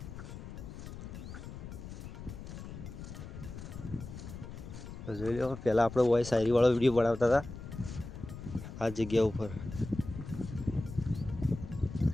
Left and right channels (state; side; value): noise; left; rumble, 10 dB below the sound